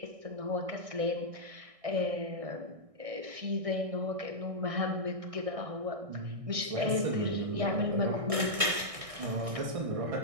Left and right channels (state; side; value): late; left; 1.6 ms